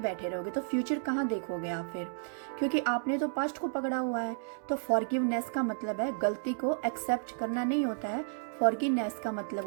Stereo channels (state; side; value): silent; left; digital silence